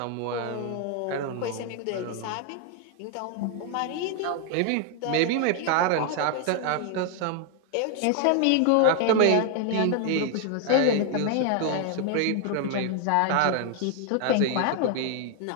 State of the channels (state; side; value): different; both; correlation 0.00